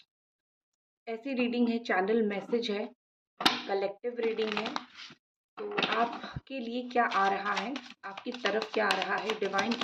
ऐसी रीडिंग है, चैनल मैसेज है, कलेक्टिव रीडिंग है। तो आपके लिए क्या आ रहा है, आपकी तरफ क्या आ रहा है, डिवाइन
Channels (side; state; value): both; identical; correlation 1.00